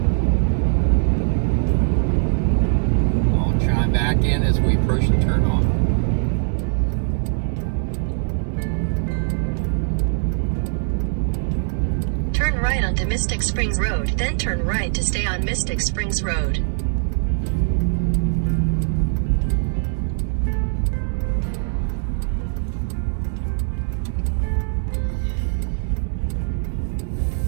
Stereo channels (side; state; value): left; silent; 65 dB below the other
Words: I'll chime back in as we approach the turn on. Turn right onto Mystic Springs Road, then turn right to stay on Mystic Springs Road.